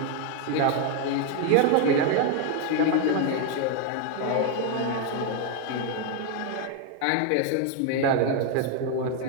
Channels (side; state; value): both; different; correlation 0.01